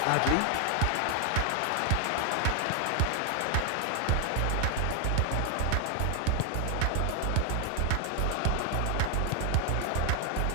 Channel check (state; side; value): different; both; correlation 0.00